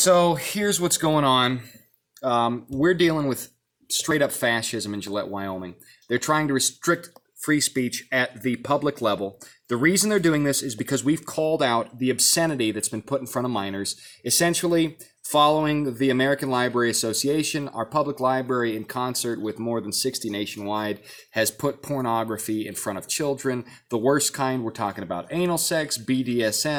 here's what's going on. We're dealing with straight up fascism in Gillette, Wyoming. They're trying to restrict free speech at the public level. The reason they're doing this is because we've called out the obscenity that's been put in front of minors. Essentially, following the American Library Association, our public library, in concert with more than 60 nationwide, has put pornography in front of children. The worst kind, we're talking about anal sex,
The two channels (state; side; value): identical; both; correlation 1.00